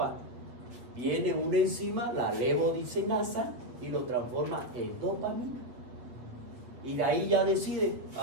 Viene una enzima, la levodiscinasa, y lo transforma en dopamina. Y de ahí ya decide a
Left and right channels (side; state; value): left; late; 7.8 ms